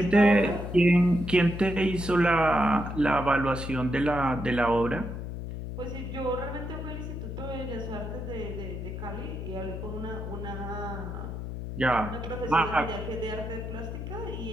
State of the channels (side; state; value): left; noise; hum, 7 dB below the sound